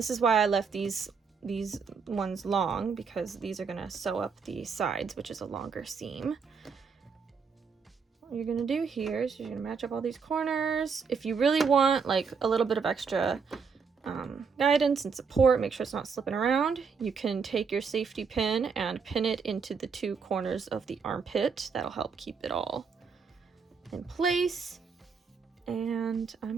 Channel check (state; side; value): quieter; left; 5.7 dB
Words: is why I left these ones long, because these are gonna sew up the sides, which is a longer seam. What you're gonna do here is you're gonna match up all these corners. If you really want like a little bit of extra guidance and support. Make sure it's not slipping around. You can take your safety pin and pin it into the two corners of the armpit. That'll help keep it all in place. And